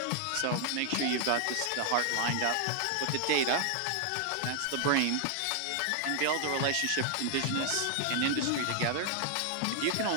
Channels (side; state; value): both; different; correlation 0.00